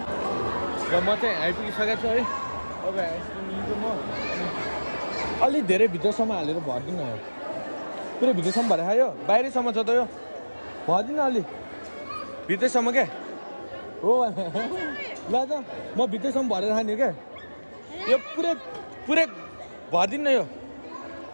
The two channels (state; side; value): inverted; both; correlation -1.00